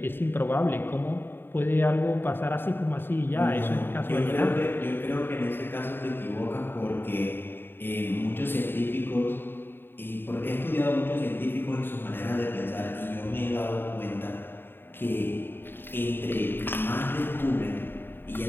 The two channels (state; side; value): late; right; 0.10 ms